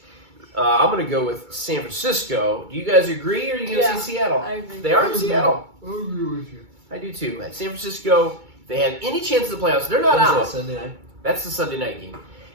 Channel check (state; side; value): late; left; 2.3 ms